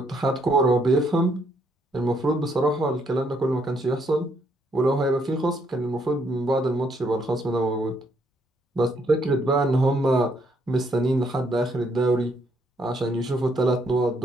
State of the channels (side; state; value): both; normal; correlation 0.72